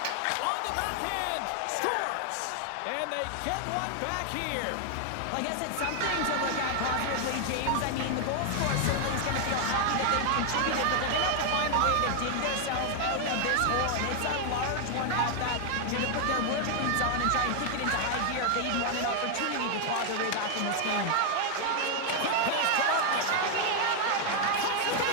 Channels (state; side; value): different; both; correlation 0.00